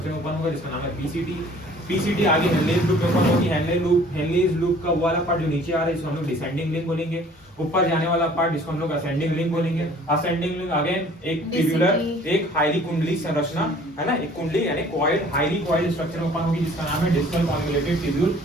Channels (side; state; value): both; normal; correlation 0.52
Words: में ओपन होगा, जिसका नाम है पीसीटी। पीसीटी आगे हेनलेज लूप में ओपन होगी। हेनलेज लूप का वाला पार्ट जो नीचे आ रहा है, इसको हम लोग डिसेंडिंग लिंक बोलेंगे। ऊपर जाने वाला पार्ट, जिसको हम लोग असेंडिंग लिंक बोलेंगे। असेंडिंग लिंक अगेन एक ट्यूबुलर, एक हाईली कुंडली संरचना है ना, एक कुंडली यानी कॉइल्ड, हाईली कॉइल्ड स्ट्रक्चर में ओपन होगी, जिसका नाम है डिस्टल कॉन्वोल्यूटेड ट्यूब्यूल